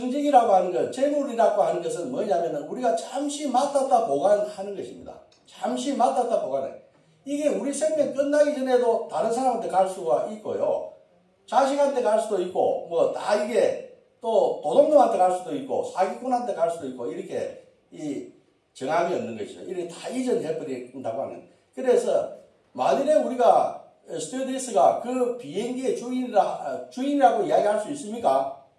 하는 것, 재물이라고 하는 것은 뭐냐면은 우리가 잠시 맡았다 보관하는 것입니다. 잠시 맡았다 보관해. 이게 우리 생명 끝나기 전에도 다른 사람한테 갈 수가 있고요. 자식한테 갈 수도 있고, 뭐 다 이게 또 도둑놈한테 갈 수도 있고, 사기꾼한테 갈 수도 있고, 이렇게 이 정함이 없는 것이죠. 이렇게 다 이전해버린다고 하는. 그래서 만일에 우리가 스튜어디스가 그 비행기의 주인이라고 이야기할 수 있습니까?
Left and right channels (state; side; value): identical; both; correlation 1.00